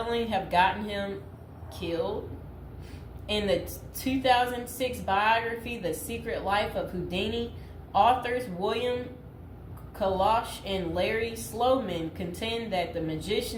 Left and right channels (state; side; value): identical; both; correlation 1.00